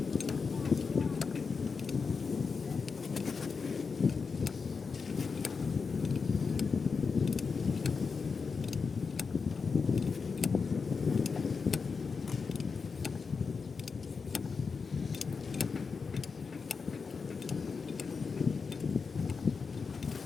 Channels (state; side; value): quieter; right; 5.1 dB